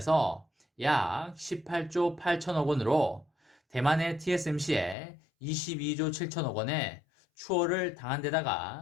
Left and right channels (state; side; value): drops out; right; at 5.0 s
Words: 약 18조 8천억 원으로 대만의 TSMC에 22조 7천억 원의 추월을 당한